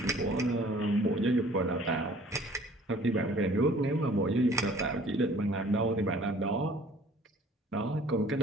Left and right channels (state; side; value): normal; both; correlation 0.53